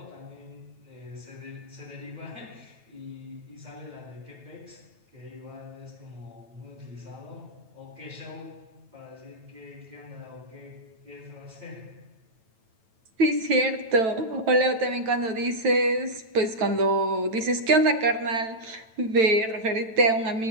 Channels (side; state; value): left; late; 9.0 ms